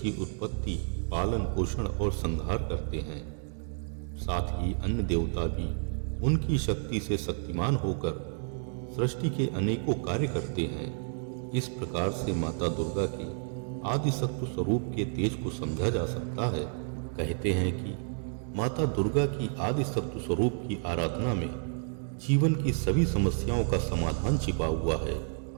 उत्पत्ति, पालन पोषण और संहार करते हैं। साथ ही अन्य देवता भी उनकी शक्ति से शक्तिमान होकर सृष्टि के अनेकों कार्य करते हैं। इस प्रकार से माता दुर्गा के आदि सत्व स्वरूप के तेज को समझा जा सकता है। कहते हैं कि माता दुर्गा की आदि सत्व स्वरूप की आराधना में जीवन की सभी समस्याओं का समाधान छिपा हुआ है।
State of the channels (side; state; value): left; silent; 57 dB below the other